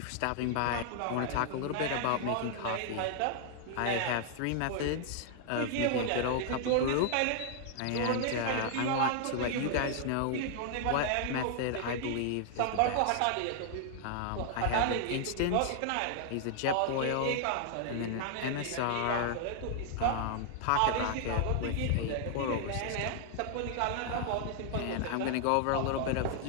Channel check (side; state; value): both; different; correlation 0.00